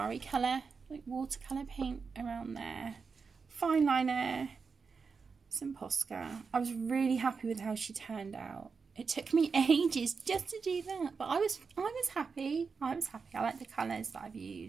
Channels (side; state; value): left; quieter; 5.2 dB